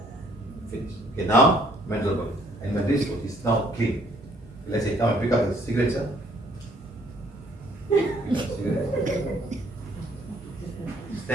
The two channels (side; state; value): both; normal; correlation 0.63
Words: Finish. Okay, now mental body. And mental is now clean. Let's say, come and pick up the cigarette, sir.